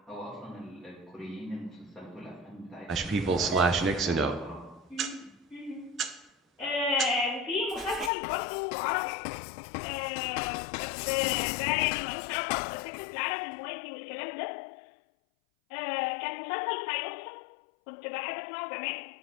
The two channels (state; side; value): drops out; right; at 8.1 s